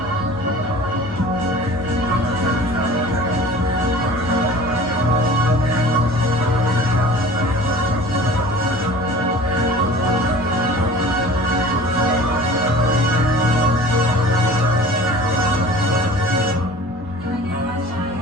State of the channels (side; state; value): both; normal; correlation 0.43